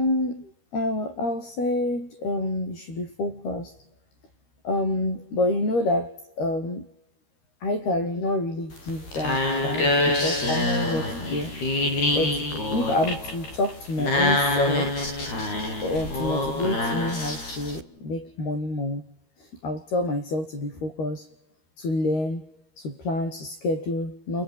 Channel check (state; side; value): late; right; 13 ms